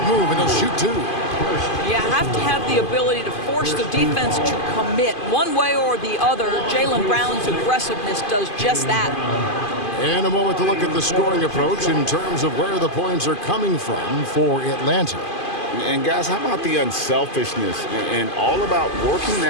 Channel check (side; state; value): right; late; 2.5 ms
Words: move, and he'll shoot 2. You have to have the ability to force the defense to commit one way or the other. Jaylen Brown's aggressiveness does just that. And a moment to look at the scoring approach in terms of where the points are coming from for Atlanta. And guys, how about the unselfishness and all about working